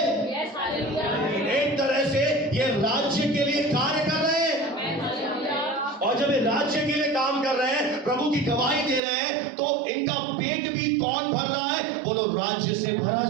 एक तरह से ये राज्य के लिए कार्य कर रहे हैं, और जब ये राज्य के लिए काम कर रहे हैं, प्रभु की गवाही दे रहे हैं, तो इनका पेट भी कौन भर रहा है? बोलो, राज्य से भरा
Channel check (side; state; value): left; drops out; at 9.0 s